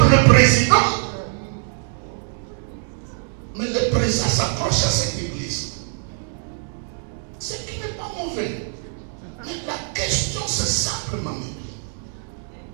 le président, mauvais. Mais la question, c'est simplement,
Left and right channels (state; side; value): silent; left; 58 dB below the other